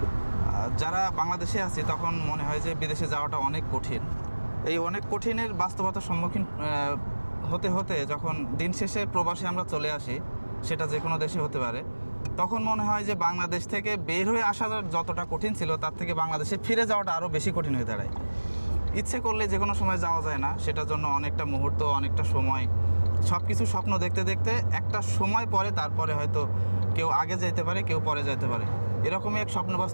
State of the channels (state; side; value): inverted; both; correlation -1.00